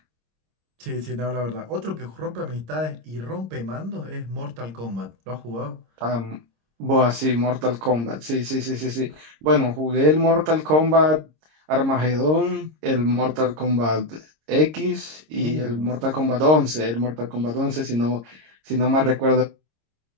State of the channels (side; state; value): left; late; 26 ms